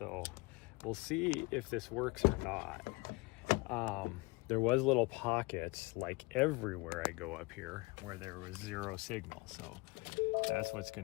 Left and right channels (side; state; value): right; quieter; 25.3 dB